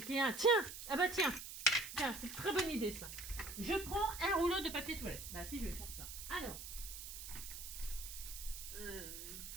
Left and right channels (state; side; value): noise; right; hiss, 9 dB below the sound